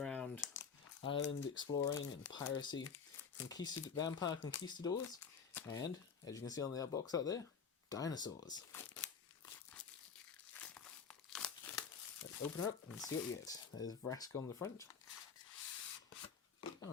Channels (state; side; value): quieter; right; 6.2 dB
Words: island exploring and piracy, vampire conquistadors, and, as you can see on the box out there, dinosaurs. Let's open her up and see what we get. There's Vraska on the front.